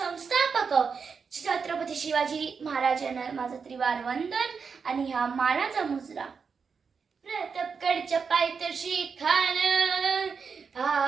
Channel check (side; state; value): left; quieter; 5.7 dB